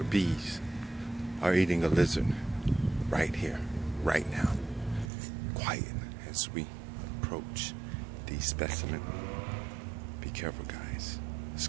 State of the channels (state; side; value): drops out; left; at 5.1 s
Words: bees are eating a lizard right here, right now. Quiet as we approach the specimen. Be careful, guys. This